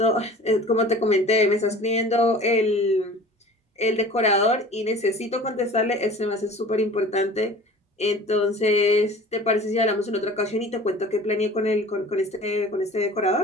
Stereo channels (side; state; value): both; normal; correlation 0.43